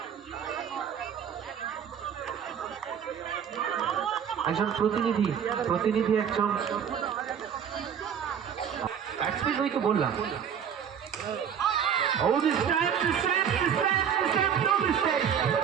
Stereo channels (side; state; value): left; quieter; 8.1 dB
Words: একজন প্রতিনিধি একজন ব্যাটসম্যান হয়ে তো বললাম। Oh, this time, no mistake.